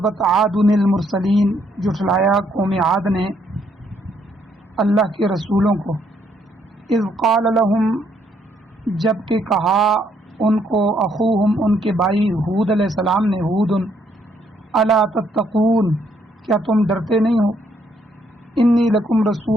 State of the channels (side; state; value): both; normal; correlation 0.70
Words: عاد المرسلین، جھٹلایا قوم عاد نے اللہ کے رسولوں کو۔ اذ قال لهم، جب کہ کہا ان کو اخوہم، ان کے بھائی ہود علیہ السلام نے، ہود، الا تتقون، کیا تم ڈرتے نہیں ہو؟ انی لکم